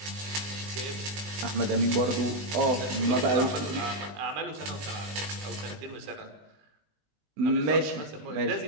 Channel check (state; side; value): late; left; 19 ms